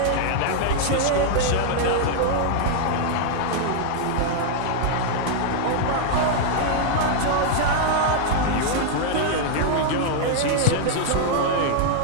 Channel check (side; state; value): both; different; correlation -0.01